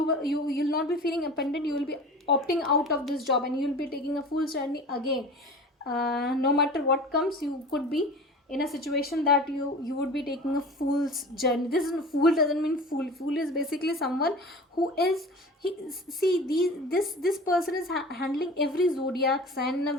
not be feeling abandoned, you will be opting out of this job, and you'll be taking a full journey again. No matter what comes, you could be in a situation that you would be taking a fool's journey. This is, fool doesn't mean fool. Fool is basically someone who is, he, see, this person is handling every zodiac sign in a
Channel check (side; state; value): both; normal; correlation 0.37